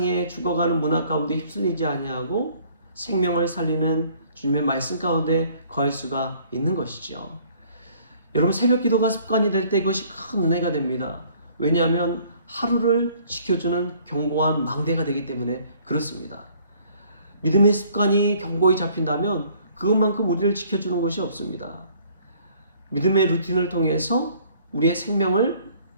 죽어가는 문화 가운데 휩쓸리지 아니하고 생명을 살리는 주님의 말씀 가운데 거할 수가 있는 것이죠. 여러분, 새벽 기도가 습관이 될 때 그것이 큰 은혜가 됩니다. 왜냐하면 하루를 지켜주는 견고한 망대가 되기 때문에 그렇습니다. 믿음의 습관이 견고히 잡힌다면 그것만큼 우리를 지켜주는 것이 없습니다. 믿음의 루틴을 통해서 우리의 생명을,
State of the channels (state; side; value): inverted; both; correlation -0.58